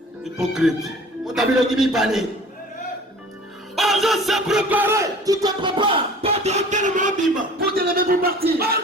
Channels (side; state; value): both; normal; correlation 0.45